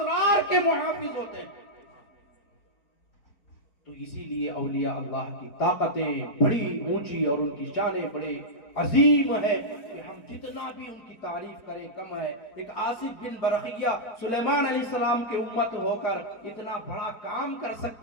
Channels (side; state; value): right; late; 4.4 ms